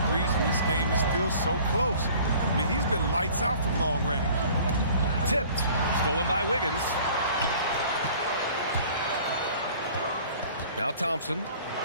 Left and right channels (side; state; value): both; inverted; correlation -0.50